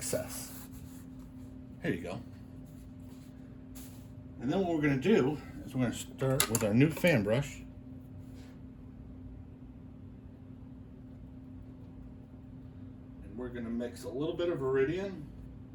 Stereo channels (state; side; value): identical; both; correlation 1.00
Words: Here you go. And then what we're going to do is we're going to start with our new fan brush. And we're going to mix a little bit of Viridian.